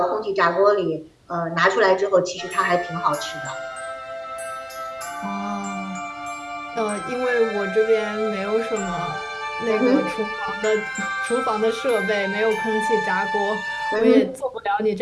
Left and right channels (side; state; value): both; identical; correlation 1.00